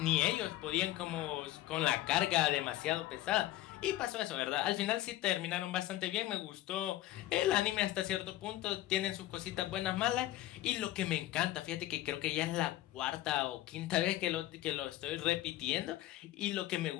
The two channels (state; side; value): quieter; right; 15.2 dB